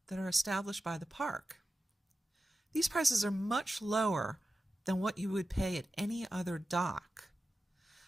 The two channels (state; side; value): normal; both; correlation 0.93